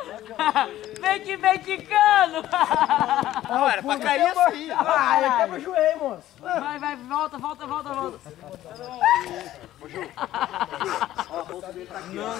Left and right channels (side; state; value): right; quieter; 13.8 dB